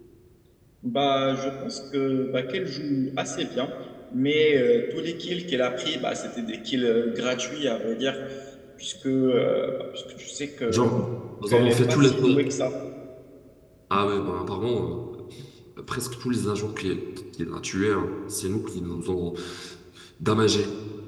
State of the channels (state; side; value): identical; both; correlation 1.00